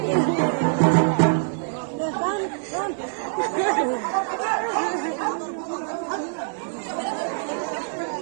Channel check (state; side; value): silent; left; digital silence